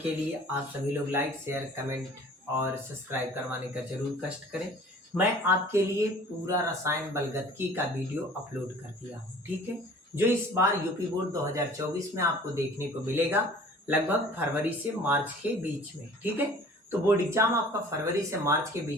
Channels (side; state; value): both; normal; correlation 0.48